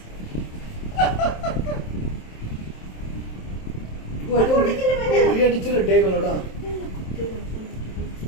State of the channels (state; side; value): late; right; 27 ms